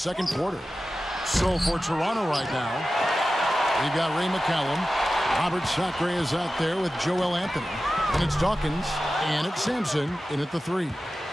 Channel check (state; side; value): normal; both; correlation 0.94